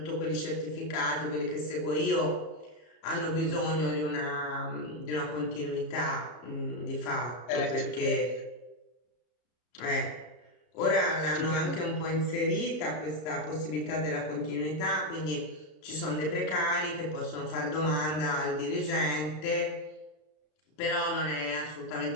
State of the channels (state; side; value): late; right; 33 ms